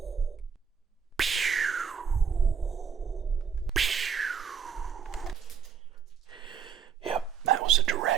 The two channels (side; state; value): left; quieter; 6.9 dB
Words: Yep, that was a